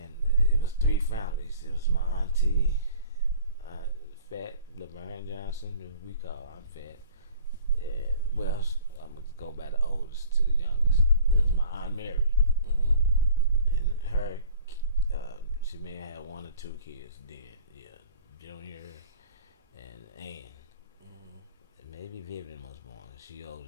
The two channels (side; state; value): both; inverted; correlation -0.47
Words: it was 3 families. It was my auntie, Fat Laverne Johnson, who we call Aunt Fat, and well, I'm gonna go by the oldest to the youngest. It was my Aunt Mary, and her. She may have had 1 or 2 kids then. Yeah, Junior and Ann. And maybe Vivian was born. She older